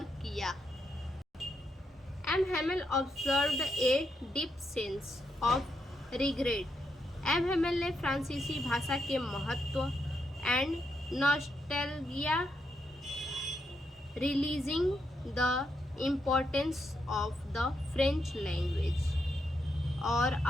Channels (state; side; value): normal; both; correlation 0.81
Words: किया। M Hamel observed a deep sense of regret. M Hamel ने फ्रांसीसी भाषा के महत्व and nostalgia releasing the importance of the French language और